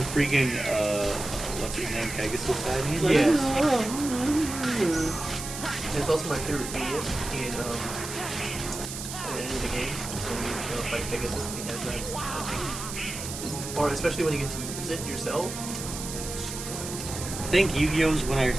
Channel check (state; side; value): noise; right; hiss, 8 dB below the sound